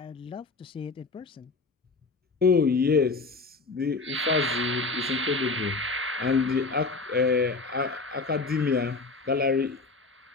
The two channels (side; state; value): right; quieter; 3.9 dB